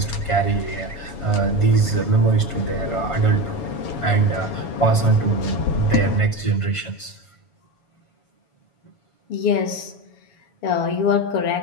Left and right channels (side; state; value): right; late; 7.1 ms